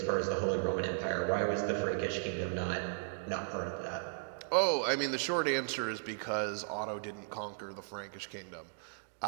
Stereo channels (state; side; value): silent; left; digital silence